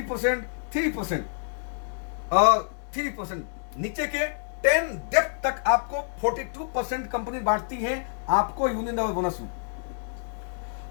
3% और 3%, नीचे के 10 डेप्थ तक आपको 42% कंपनी बांटती है आपको यूनिलेवल बोनस में।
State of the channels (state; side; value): silent; right; digital silence